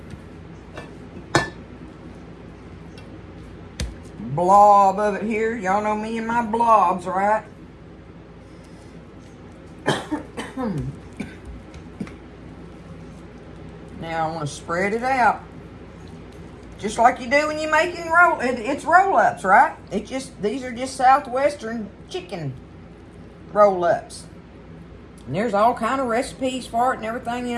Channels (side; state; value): both; identical; correlation 1.00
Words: blob of it here. Y'all know me and my blobs, right? Now I want to spread it out. Just like you do when you're making it's roll-ups, right? These are just Southwestern chicken roll-ups. And there's all kind of recipes for it and everything, you